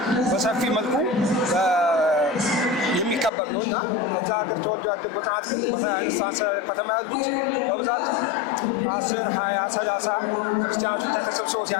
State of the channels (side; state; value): right; drops out; at 3.3 s